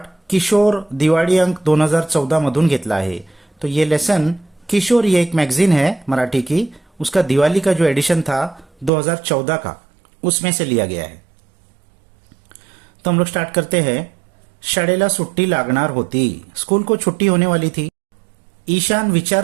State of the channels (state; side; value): drops out; left; at 8.9 s